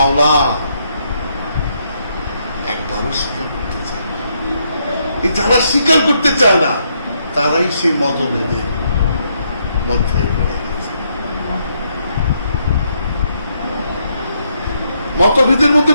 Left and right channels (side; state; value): both; inverted; correlation -0.76